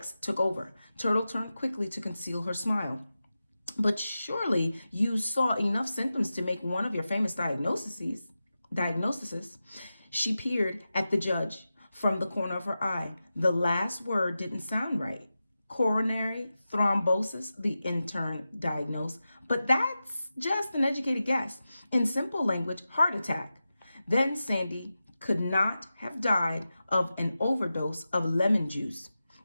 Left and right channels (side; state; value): both; inverted; correlation -0.93